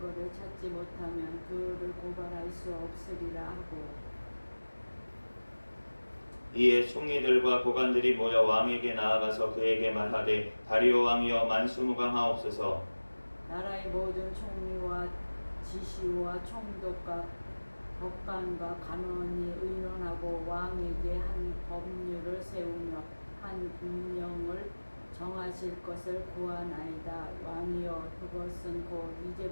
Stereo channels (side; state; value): both; inverted; correlation -1.00